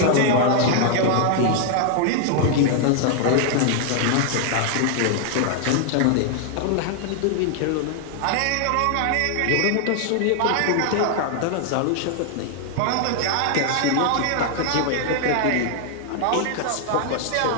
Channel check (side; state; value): both; different; correlation 0.00